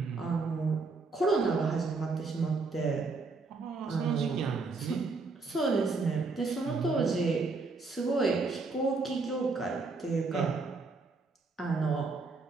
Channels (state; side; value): quieter; left; 4.0 dB